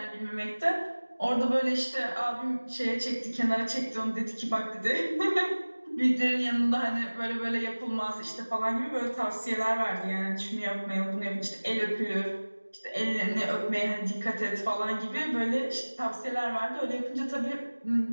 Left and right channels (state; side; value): inverted; both; correlation -1.00